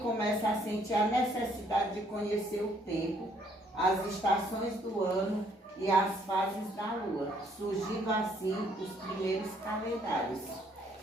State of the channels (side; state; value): both; normal; correlation 0.66